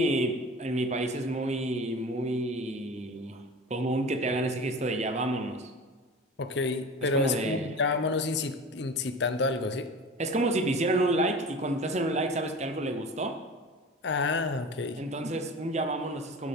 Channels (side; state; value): both; normal; correlation 0.36